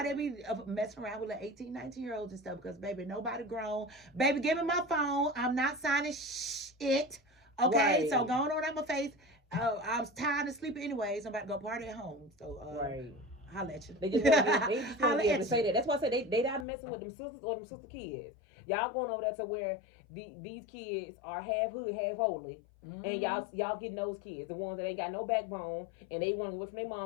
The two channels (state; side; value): drops out; right; at 16.7 s